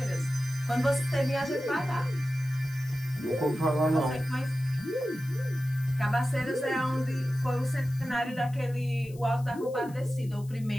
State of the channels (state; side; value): noise; left; hiss, 24 dB below the sound